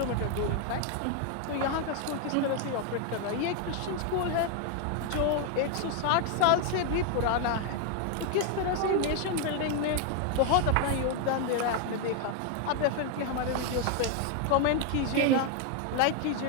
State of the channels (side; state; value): both; different; correlation 0.01